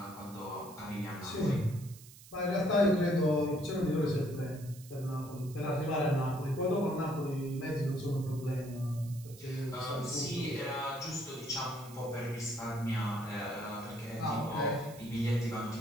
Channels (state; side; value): noise; right; hiss, 19 dB below the sound